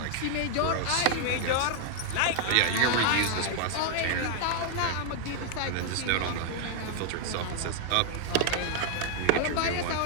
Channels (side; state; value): both; different; correlation 0.00